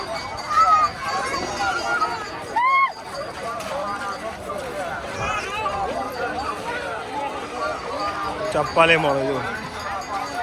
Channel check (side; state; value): both; identical; correlation 1.00